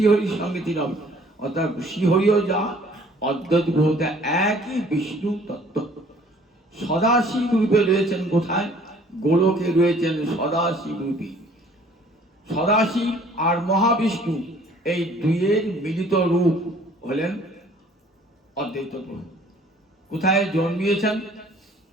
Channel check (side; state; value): both; normal; correlation 0.55